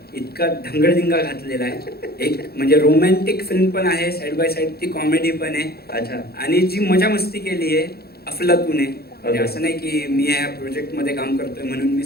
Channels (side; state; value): right; late; 0.46 ms